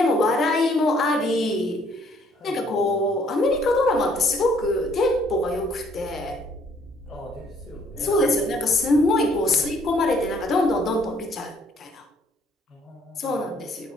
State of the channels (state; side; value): normal; both; correlation 0.64